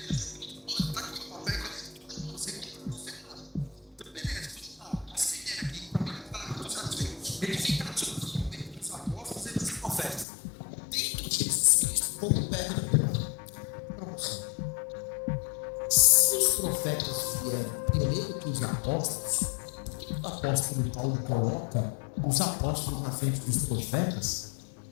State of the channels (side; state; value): right; drops out; at 10.2 s